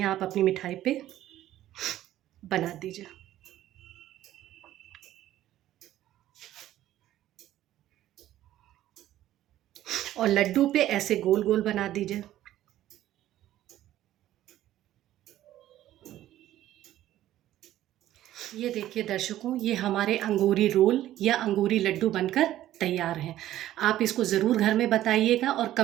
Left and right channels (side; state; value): left; quieter; 13.5 dB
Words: आप अपनी मिठाई पे बना दीजिए। और लड्डू पे ऐसे गोल गोल बना दीजिए। ये देखिए दर्शकों, ये हमारे अंगूरी रोल या अंगूरी लड्डू बनकर तैयार हैं। आप इसको ज़रूर घर में बताइएगा और